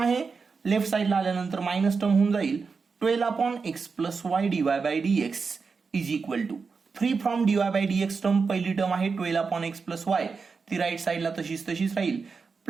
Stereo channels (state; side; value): quieter; left; 5.0 dB